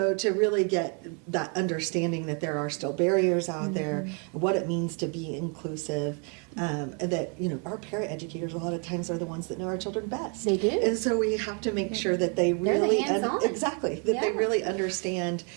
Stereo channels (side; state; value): left; quieter; 37.5 dB